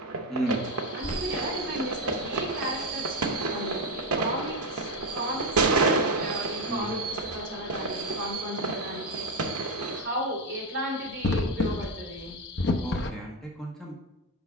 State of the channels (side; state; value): both; normal; correlation 0.09